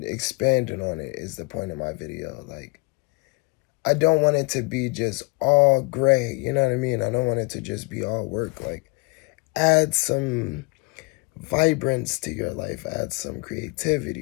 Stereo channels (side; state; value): right; quieter; 28.6 dB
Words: expanding on it is the point of my video. Like I don't want it to be just all gray, you know what I mean? I don't want it to just be all work. Like add some vibrance to your life, add some